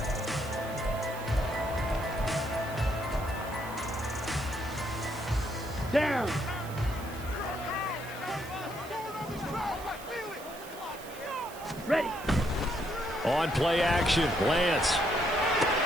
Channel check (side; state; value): right; noise; hiss, 17 dB below the sound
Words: Down. Ready. On play action, Lance.